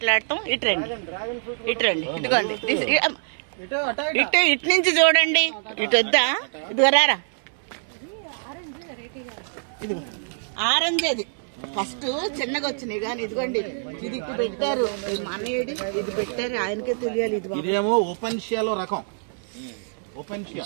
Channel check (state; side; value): silent; left; 62 dB below the other